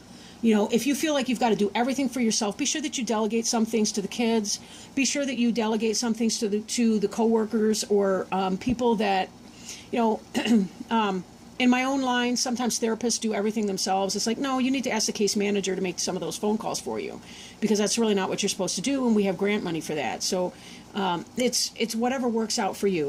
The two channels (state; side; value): identical; both; correlation 1.00